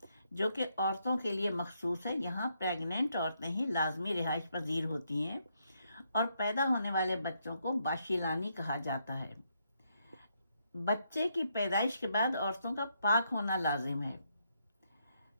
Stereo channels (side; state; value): both; inverted; correlation -0.77